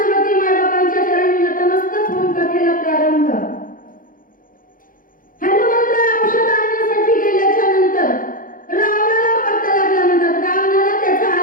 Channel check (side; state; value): right; late; 0.40 ms